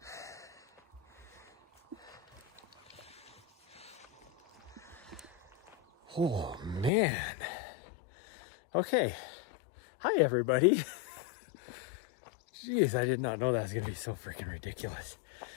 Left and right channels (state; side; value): drops out; right; at 6.9 s